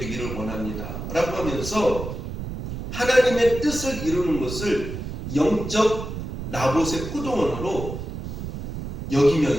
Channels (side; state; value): right; noise; rumble, 6 dB below the sound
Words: 원합니다 라고 하면서 하나님의 뜻을 이루는 것을 영적 나봇의 포도원으로